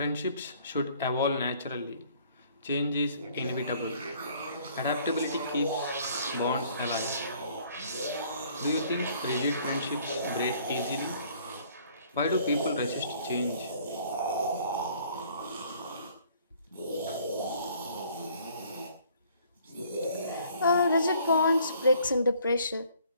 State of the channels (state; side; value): inverted; both; correlation -0.59